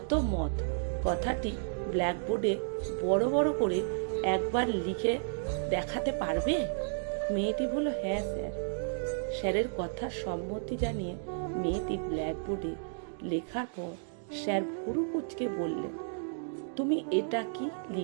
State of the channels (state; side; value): silent; left; digital silence